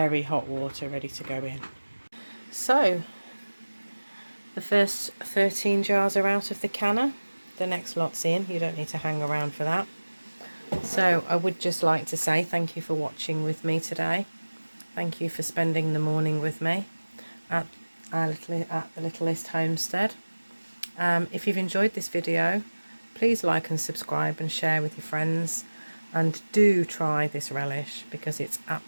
hot water, ready to go in. So the first 13 jars are out of the canner. The next lot's in. You don't need to hang around for that. So I would just like to say thank you for watching with me today. Thank you for spending the morning with me at the Littlest Homestead. If you've enjoyed this video, please like and subscribe and share with your friends, and do try this relish because it's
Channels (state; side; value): inverted; both; correlation -1.00